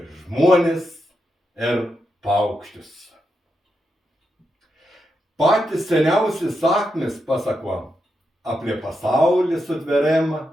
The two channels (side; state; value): both; normal; correlation 0.85